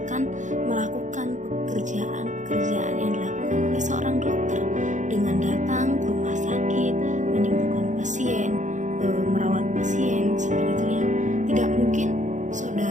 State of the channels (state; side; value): late; left; 0.36 ms